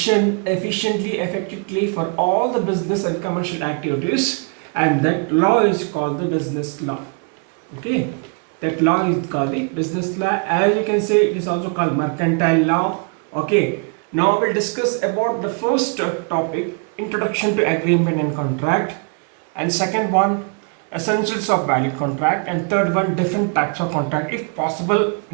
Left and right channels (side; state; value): left; quieter; 38.3 dB